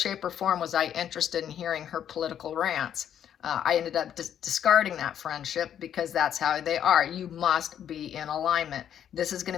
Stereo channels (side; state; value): right; quieter; 9.6 dB